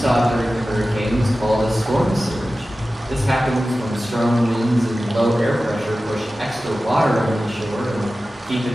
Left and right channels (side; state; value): both; normal; correlation 0.95